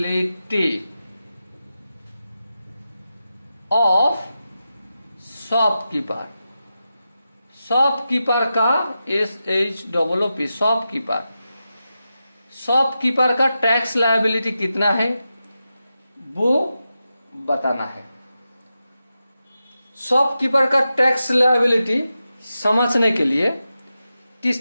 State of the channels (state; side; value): inverted; both; correlation -0.90